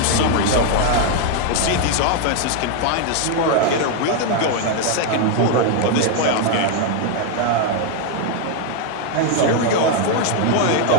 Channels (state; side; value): different; both; correlation 0.00